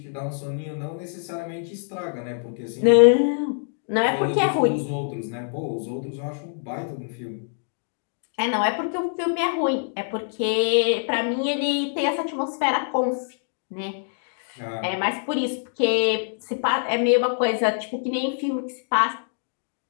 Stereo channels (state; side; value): silent; right; digital silence